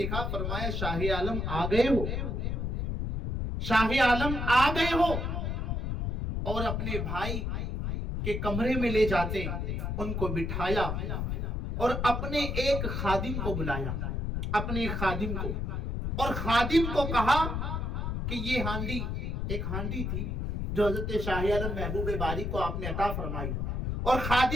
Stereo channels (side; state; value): left; noise; rumble, 2 dB below the sound